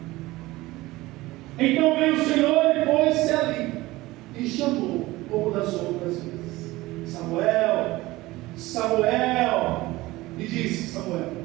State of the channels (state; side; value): quieter; left; 19.1 dB